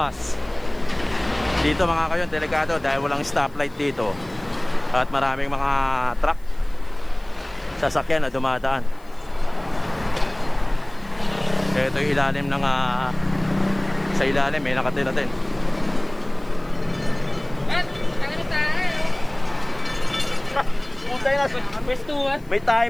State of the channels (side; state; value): left; noise; hiss, 29 dB below the sound